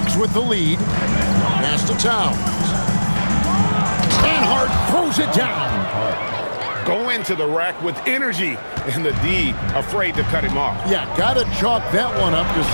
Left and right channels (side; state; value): both; inverted; correlation -1.00